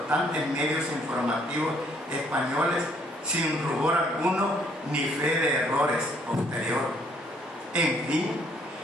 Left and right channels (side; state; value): both; normal; correlation 0.65